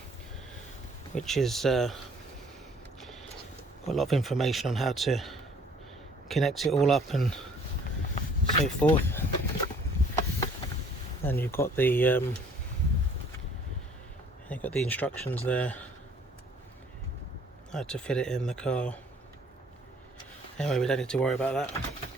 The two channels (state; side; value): normal; both; correlation 0.57